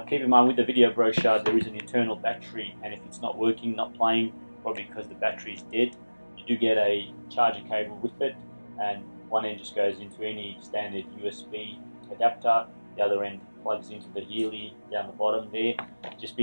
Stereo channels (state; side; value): inverted; both; correlation -1.00